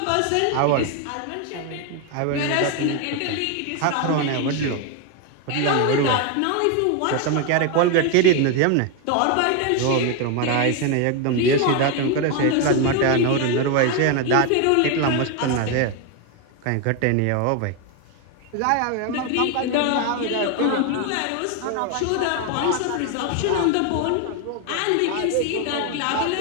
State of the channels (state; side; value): different; both; correlation 0.01